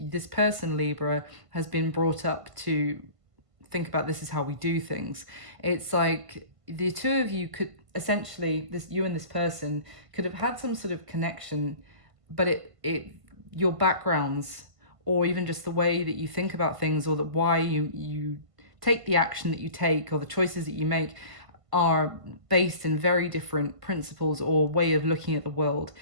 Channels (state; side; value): late; left; 1.5 ms